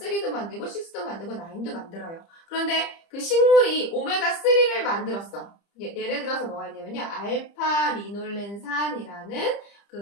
만들고 6도 만들고 9도 만들어요. 그런데 그 식물이 오메가3를 만들었어. 예를 들어서 뭐가 있냐면요, 알파 리놀렌산이라는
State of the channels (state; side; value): late; right; 30 ms